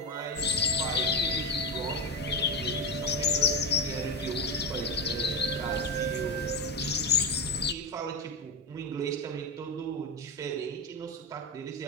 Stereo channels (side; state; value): both; normal; correlation 0.16